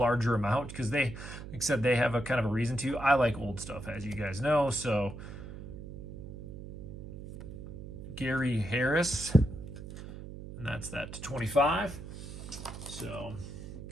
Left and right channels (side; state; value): right; noise; hum, 11 dB below the sound